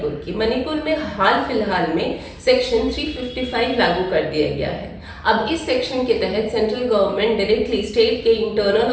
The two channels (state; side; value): identical; both; correlation 1.00